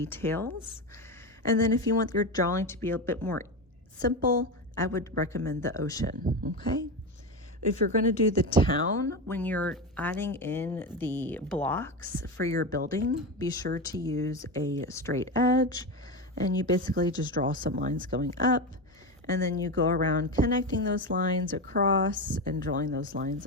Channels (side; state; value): both; normal; correlation 0.18